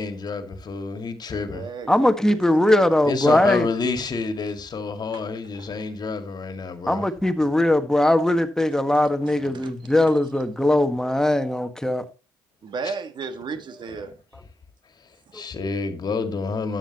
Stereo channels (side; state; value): both; normal; correlation 0.89